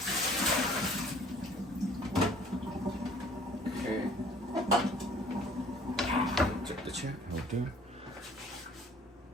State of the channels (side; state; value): both; normal; correlation 0.54